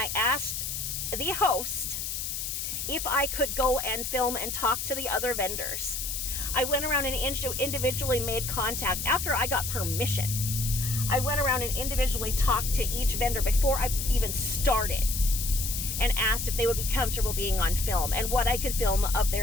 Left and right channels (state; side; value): noise; left; hiss, 3 dB below the sound